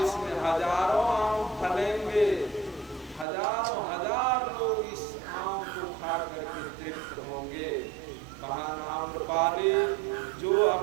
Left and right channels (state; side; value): drops out; left; at 3.2 s